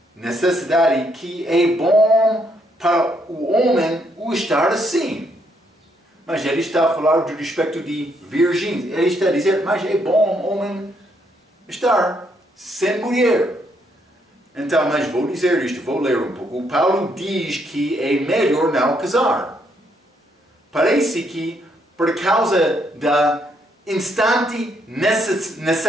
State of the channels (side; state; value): both; normal; correlation 0.73